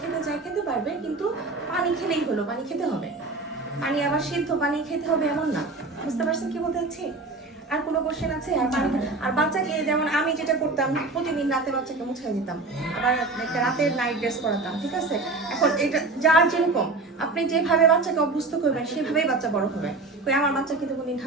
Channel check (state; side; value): quieter; left; 3.5 dB